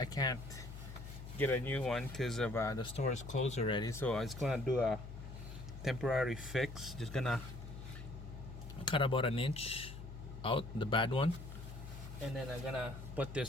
can't get a new one because of the store is closed already. So I was gonna do a temporary fix. Just gonna cut about an inch out, the bad one, and then I'm gonna put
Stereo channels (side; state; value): left; noise; hum, 11 dB below the sound